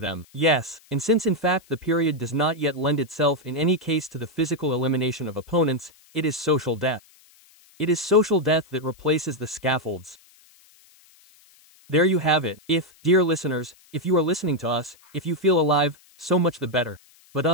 Yes, and since in fact the period does not yet lend itself in any case to the physical elimination of opponents, it is social death. It is social death that replaces the scaffolds. There you have it. If, dear listeners, if you are listening to us, if you feel alive, so much the better.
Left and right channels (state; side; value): noise; left; hiss, 29 dB below the sound